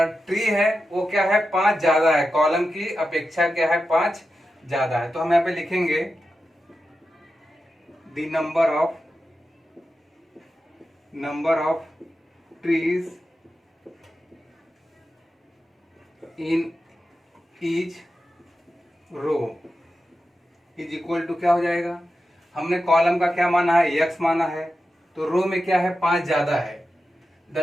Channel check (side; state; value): both; normal; correlation 0.91